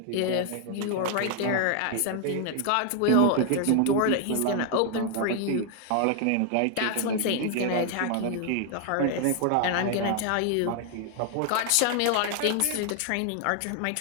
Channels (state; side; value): different; both; correlation 0.00